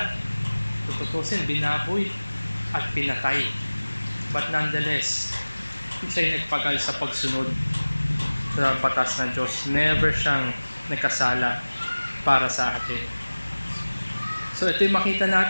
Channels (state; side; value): inverted; both; correlation -1.00